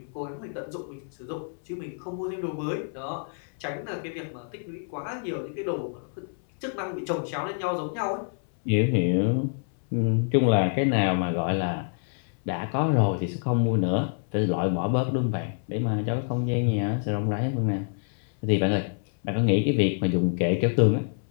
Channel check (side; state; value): right; silent; 60 dB below the other